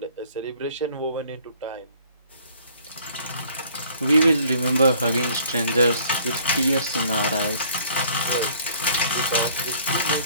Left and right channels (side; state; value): both; inverted; correlation -0.57